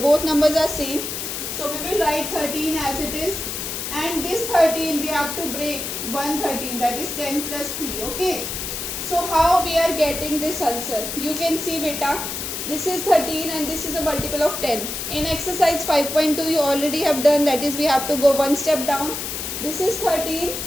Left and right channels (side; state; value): left; noise; hiss, 5 dB below the sound